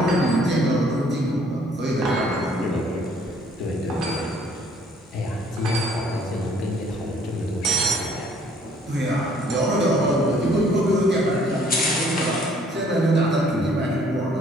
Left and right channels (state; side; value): normal; both; correlation 0.60